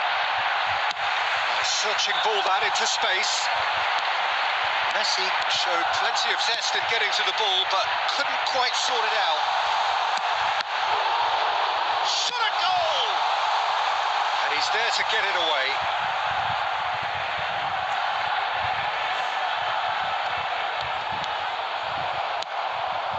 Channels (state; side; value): identical; both; correlation 1.00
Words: Searching ball that into space. Messi showed plenty of zest in getting to the ball, but couldn't quite sort it out. Shot a goal! And he's there to get it away.